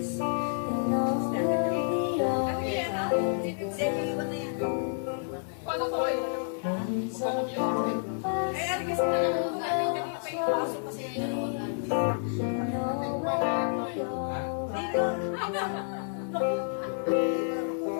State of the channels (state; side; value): silent; right; digital silence